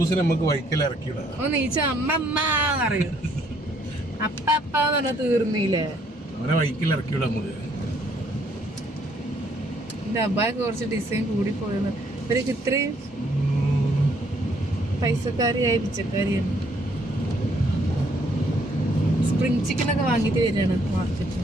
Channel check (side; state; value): both; normal; correlation 0.67